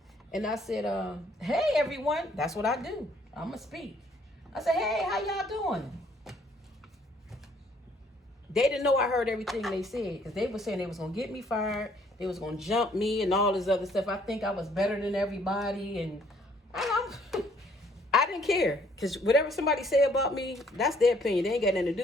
and I said, hey everyone. That's what I do. I'ma speak. I said, hey, how y'all doing? They didn't know I heard everything they said, because they were saying they was going to get me fired. They was going to jump me and all this other stuff. I think I was better than everybody. And I didn't care, because whatever somebody say about me, that's their opinion. They ain't got nothing to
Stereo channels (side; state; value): both; normal; correlation 0.64